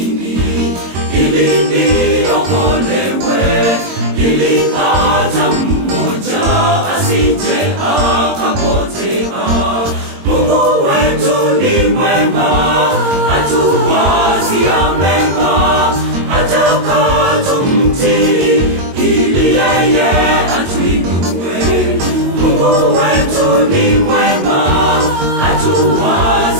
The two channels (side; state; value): left; late; 22 ms